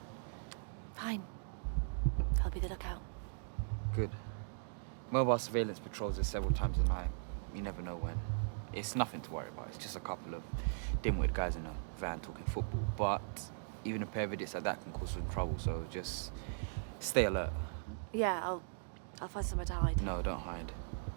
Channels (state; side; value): silent; left; digital silence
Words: Fine. I'll be the lookout. Good. Mobile surveillance patrols us several times a night. You never know when. It's nothing to worry about. It's just a couple of dim-witted guys in a van talking football. But even a pair of idiots like that can cause some trouble, so just stay alert. Yeah, I'll find somewhere to hide. No, don't hide.